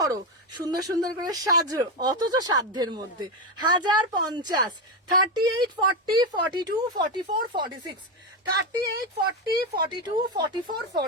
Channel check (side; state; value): both; normal; correlation 0.10